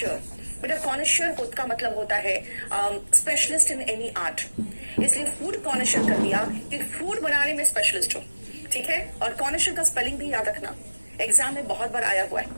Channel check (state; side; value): inverted; both; correlation -1.00